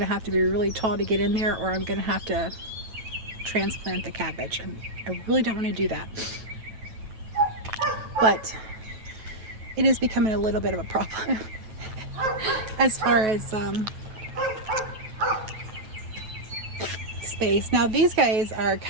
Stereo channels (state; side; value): late; left; 9.1 ms